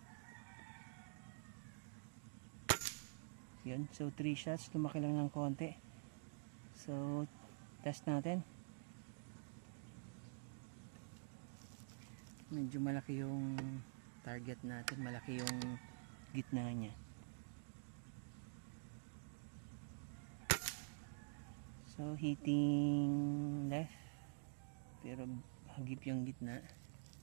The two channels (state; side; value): silent; left; digital silence